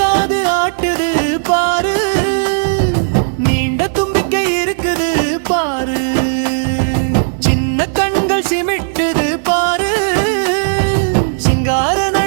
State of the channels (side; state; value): left; silent; digital silence